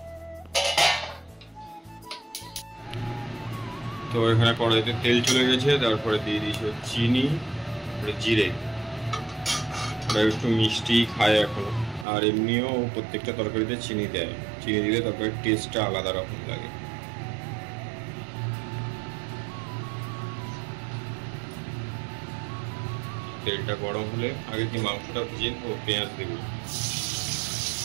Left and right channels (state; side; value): drops out; left; at 12.1 s